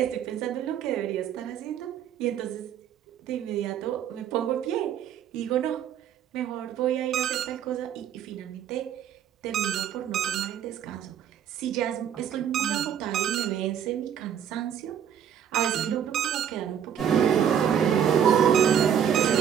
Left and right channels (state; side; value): quieter; left; 9.1 dB